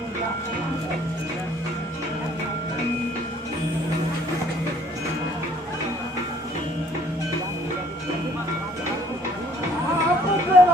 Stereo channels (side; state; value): both; normal; correlation 0.59